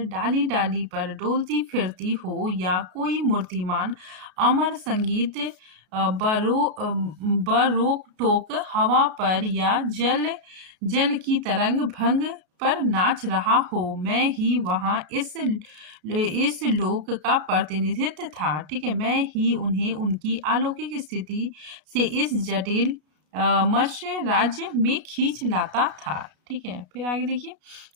डाली डाली पर डोलती फिरती हो, या कोई मूर्तिमान अमर संगीत बरोक टोक हवा पर, या जल की तरंग भंग पर नाच रहा हो। मैं ही वहां इस लोक का प्रतिनिधित्व था। ठीक है, मैं ही उन्हें उनकी अलौकिक स्थिति से इस जटिल मत्स्य राज्य में खींच लाता था। ठीक है, फिर आगे देखिए,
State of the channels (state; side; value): late; left; 33 ms